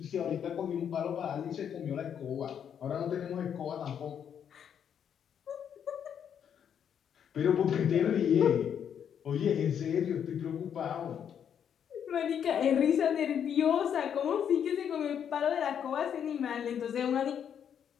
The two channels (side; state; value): right; quieter; 8.5 dB